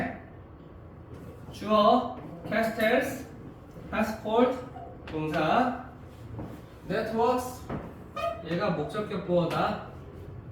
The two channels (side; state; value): both; identical; correlation 1.00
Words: 주어 castles, passport 동사 networks 얘가 목적격 보어다.